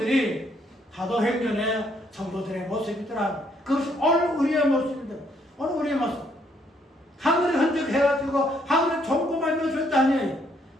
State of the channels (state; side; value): normal; both; correlation 0.70